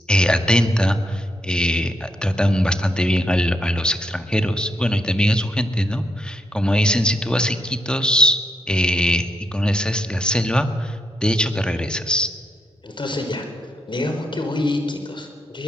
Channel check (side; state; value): both; normal; correlation 0.80